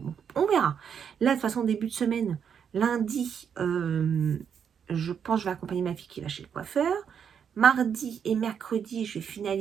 on verra. Là, de toute façon, début de semaine, lundi, je pense que je vais accompagner ma fille qui va chez le coiffeur. Mardi et mercredi, je vais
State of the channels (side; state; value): left; quieter; 7.6 dB